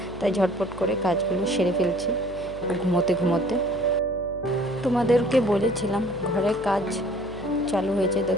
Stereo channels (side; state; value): left; noise; hum, 16 dB below the sound